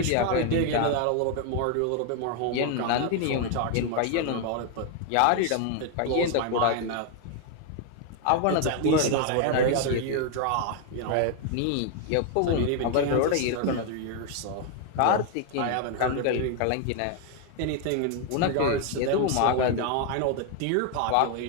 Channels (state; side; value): different; both; correlation 0.00